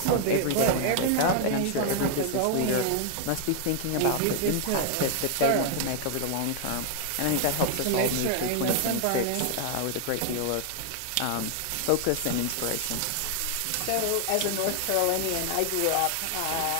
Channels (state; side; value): different; both; correlation 0.00